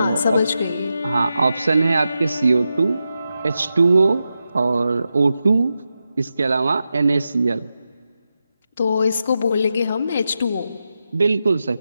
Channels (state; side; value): inverted; both; correlation -0.90